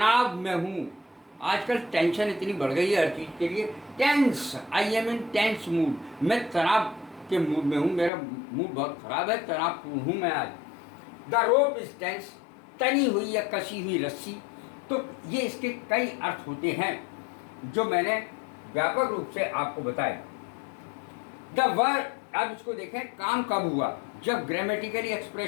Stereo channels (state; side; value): drops out; right; at 8.1 s